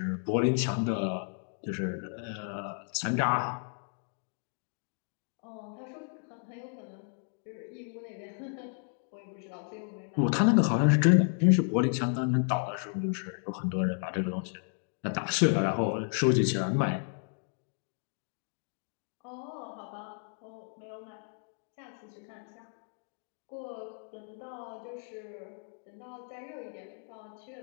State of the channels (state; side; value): silent; right; 56 dB below the other